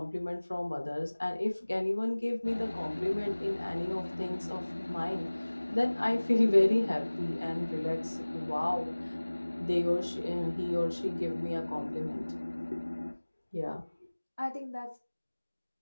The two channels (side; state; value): both; inverted; correlation -1.00